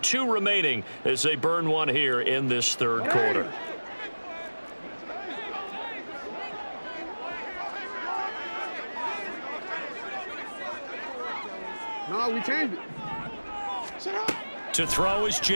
remaining as they burn one here in this third quarter. No, we changed it. To throw is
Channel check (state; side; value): inverted; both; correlation -1.00